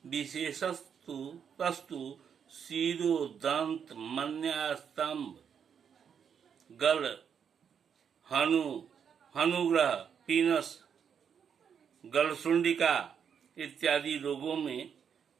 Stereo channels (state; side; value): quieter; left; 7.5 dB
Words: विशेषस्तु तस्तु शिरो दंत मन्यास्तंभ गल हनुग्रह पीनस गलसुंडिका इत्यादि रोगों में